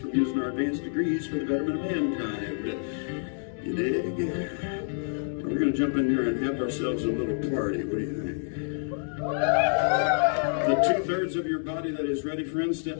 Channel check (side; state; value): right; silent; 60 dB below the other